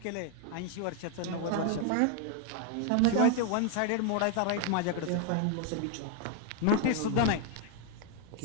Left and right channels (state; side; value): different; both; correlation 0.00